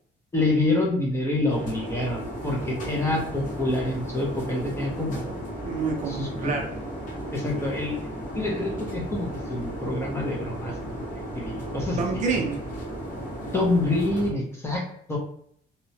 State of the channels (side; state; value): both; normal; correlation 0.53